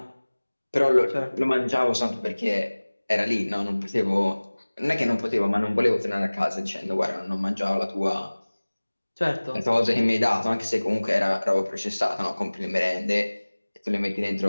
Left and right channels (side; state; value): both; inverted; correlation -1.00